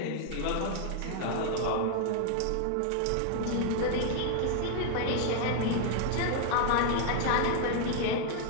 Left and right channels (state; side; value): different; both; correlation 0.00